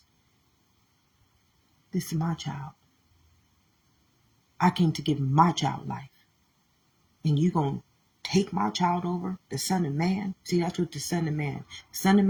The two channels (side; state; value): both; identical; correlation 1.00